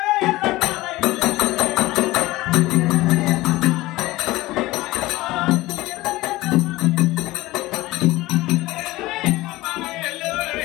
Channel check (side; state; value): right; quieter; 18.6 dB